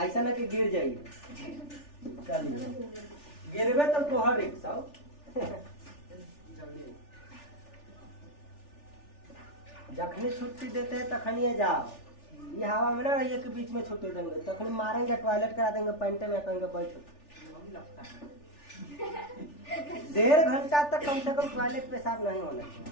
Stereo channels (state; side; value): late; right; 3.4 ms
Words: ऐसा ना कि गिर जाइए। चलिए गिरबे तो तोहर रिक्शा जखनी छुट्टी देते हैं तखनी जाओ, ये हवा में ना रहिए के बीच में छुट्टी देंगे तखनी मारेंगे टॉयलेट करा देंगे पैंटे में कहेंगे बैठो 1.5 घंटा तक कम से कम टॉयलेट पेशाब नहीं होना चाहिए,